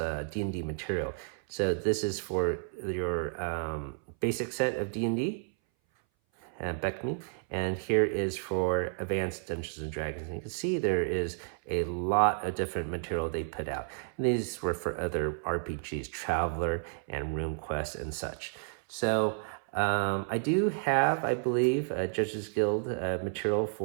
D&D material. So this is for your basic set of D&D, Beckme, and here is for Advanced Dungeons and Dragons. And you can see there is a lot of different material they put out. And these were for other RPGs, Traveler and RuneQuest and such. So I do have, I believe, Judges Guild material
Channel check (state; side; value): silent; left; 57 dB below the other